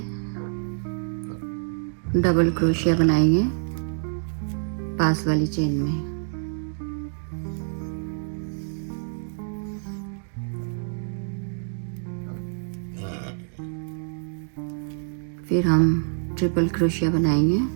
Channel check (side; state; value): left; silent; digital silence